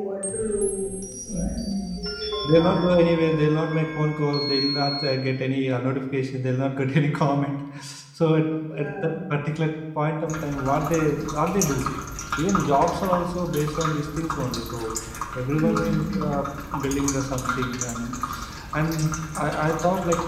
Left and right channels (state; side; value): identical; both; correlation 1.00